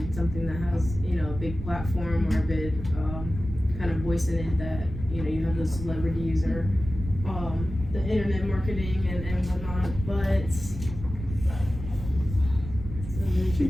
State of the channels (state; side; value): noise; right; rumble, 9 dB below the sound